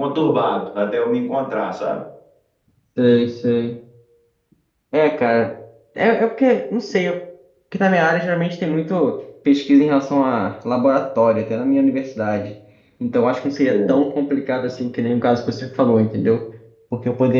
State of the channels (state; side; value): identical; both; correlation 1.00